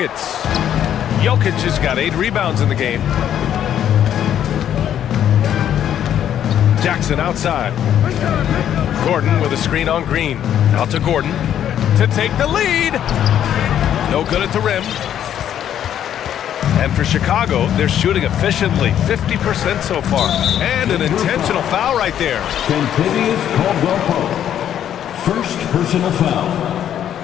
Jokic has got 8 rebounds in the game. Jackson outside. Gordon with a screen on Green. Out to Gordon to take the lead. No good at the rim. And for Chicago, they're shooting efficiently, 50% so far. And an intentional foul right there. Continuous Caldwell Pope. First personal foul.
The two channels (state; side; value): quieter; right; 10.2 dB